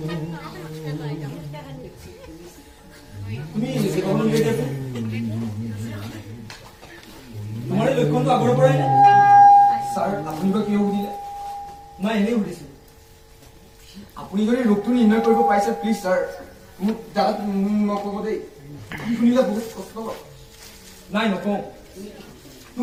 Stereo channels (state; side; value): identical; both; correlation 1.00